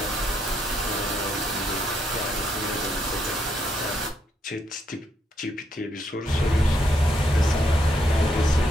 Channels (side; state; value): both; normal; correlation 0.76